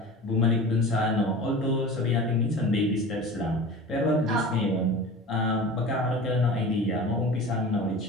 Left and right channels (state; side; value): normal; both; correlation 0.35